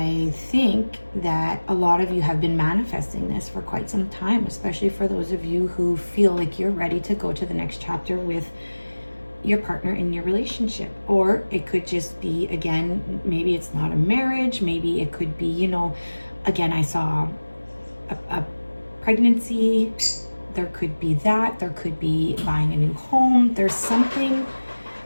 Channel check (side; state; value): both; inverted; correlation -1.00